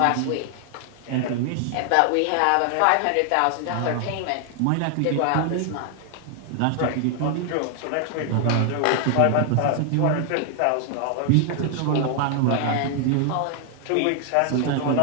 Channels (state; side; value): different; both; correlation 0.00